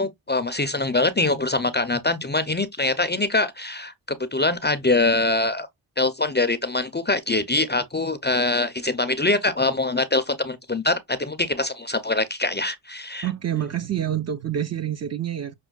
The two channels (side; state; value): both; normal; correlation -0.01